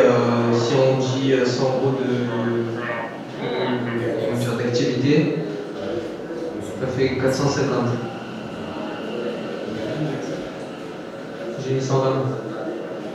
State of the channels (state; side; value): identical; both; correlation 1.00